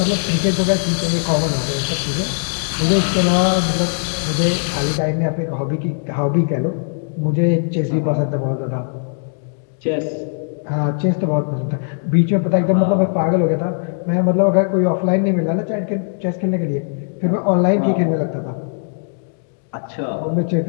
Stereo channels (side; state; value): right; silent; digital silence